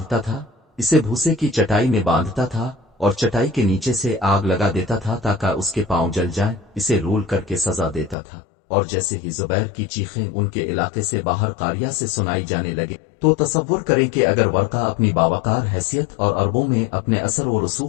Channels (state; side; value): drops out; right; at 8.2 s